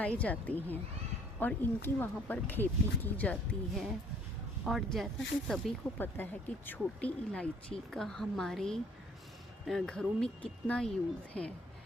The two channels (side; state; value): both; normal; correlation 0.59